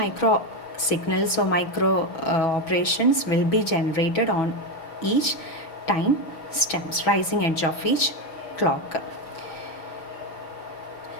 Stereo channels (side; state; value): right; late; 6.1 ms